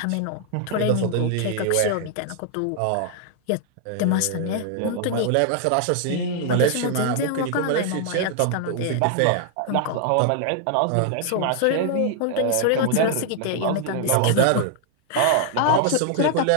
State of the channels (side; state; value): both; different; correlation 0.00